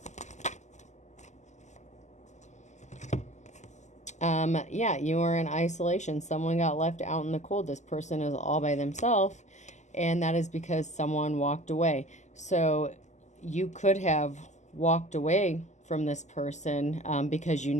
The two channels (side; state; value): right; late; 0.34 ms